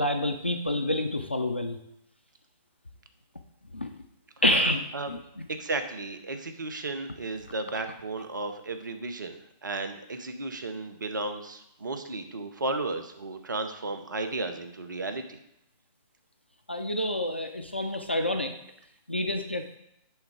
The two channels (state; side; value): inverted; both; correlation -0.31